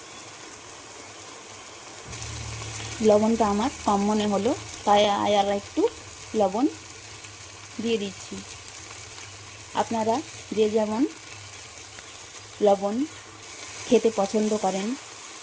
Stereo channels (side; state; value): both; identical; correlation 1.00